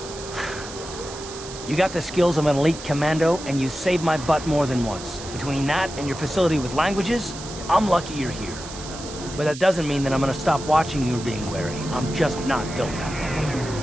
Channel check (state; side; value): noise; right; hiss, 12 dB below the sound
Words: You got the skills of an elite commando, and you saved my butt more than once. Between that and your facility with languages, I'm lucky you're here. But that doesn't mean that I'm gonna stop watching you being wary. I'm just not built that way.